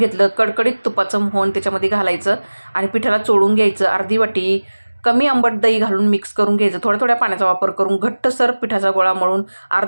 कडकडीत तुपाचं मोहन त्याच्यामध्ये घालायचं आणि पिठाला चोळून घ्यायचं. अर्धी वाटी कमी आंबट दही घालून मिक्स करून घ्यायचं. थोड्या थोड्या पाण्याचा वापर करून घट्टसर पिठाचा गोळा मळून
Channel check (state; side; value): inverted; both; correlation -1.00